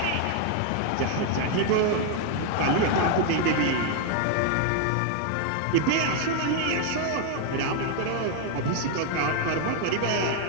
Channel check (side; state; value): both; different; correlation 0.00